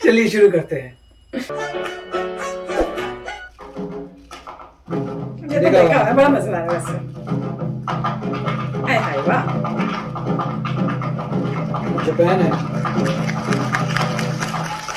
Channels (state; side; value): identical; both; correlation 1.00